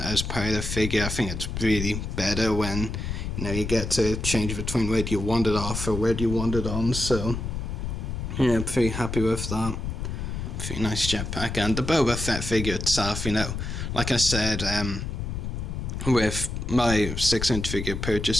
part of the figure. I think it's really better when, you get to change between where do you want it off or where do you want it on. So yeah, I'm pretty happy with that. Pretty nice jetpack. And the Boba Fett figure itself, like I said, with my 6-inch figure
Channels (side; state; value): left; noise; rumble, 4 dB below the sound